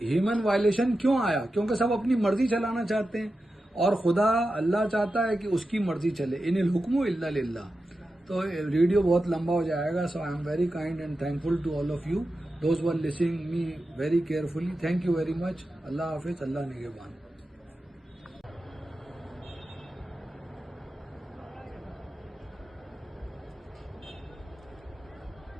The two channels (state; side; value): normal; both; correlation 0.91